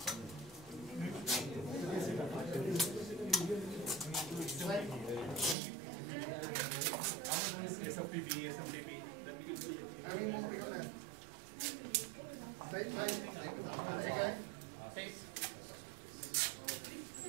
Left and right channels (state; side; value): drops out; left; at 5.6 s